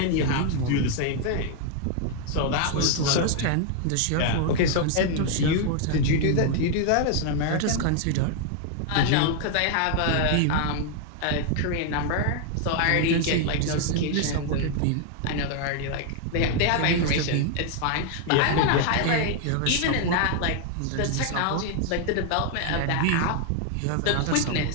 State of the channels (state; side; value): different; both; correlation 0.00